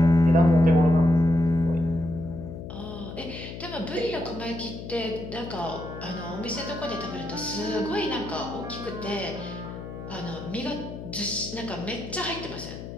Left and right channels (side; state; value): left; noise; hum, 10 dB below the sound